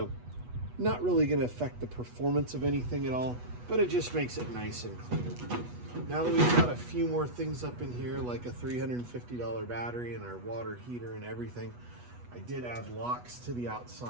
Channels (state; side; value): late; left; 8.2 ms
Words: not really going to affect the performance of anything at all, but it just makes it nice and cleaner. Now that we've got a few more things up in here, like a $350 battery and our water heater and everything, I did add locks to the